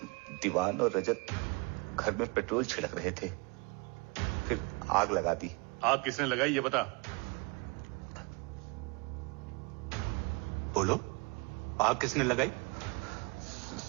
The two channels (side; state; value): left; quieter; 30.0 dB